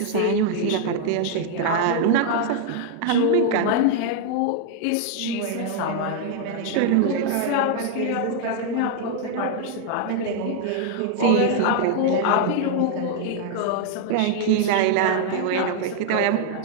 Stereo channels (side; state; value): both; different; correlation 0.00